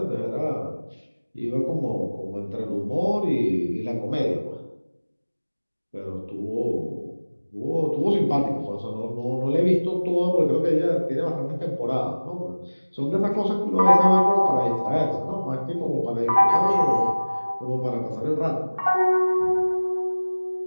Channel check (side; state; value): both; inverted; correlation -1.00